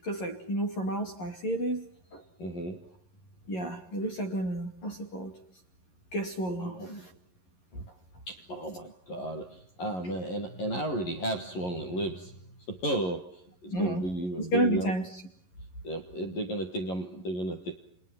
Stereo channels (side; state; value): right; late; 11 ms